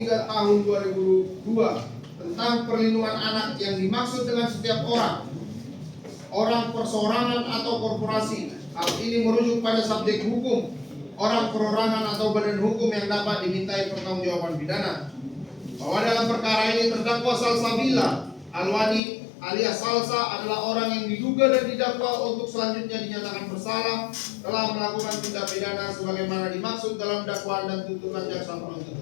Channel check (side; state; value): right; drops out; at 19.0 s